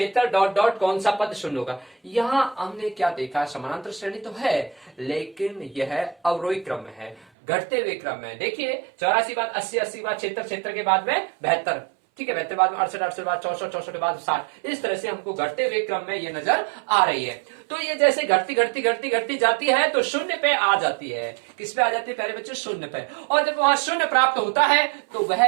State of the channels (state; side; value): drops out; left; at 7.2 s